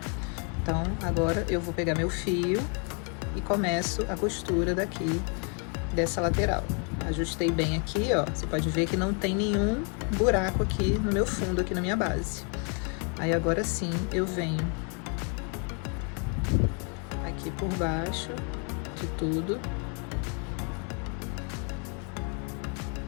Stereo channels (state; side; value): quieter; right; 38.6 dB